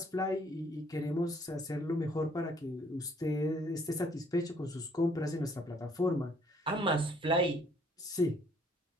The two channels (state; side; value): normal; both; correlation 0.63